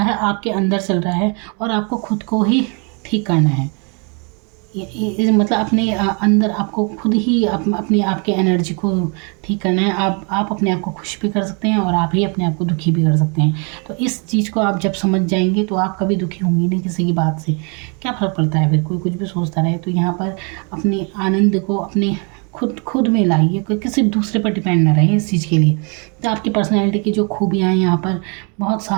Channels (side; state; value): left; quieter; 34.9 dB